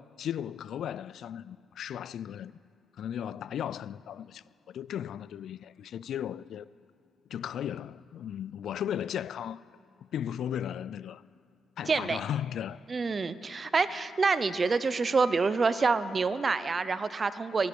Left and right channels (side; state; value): both; normal; correlation 0.83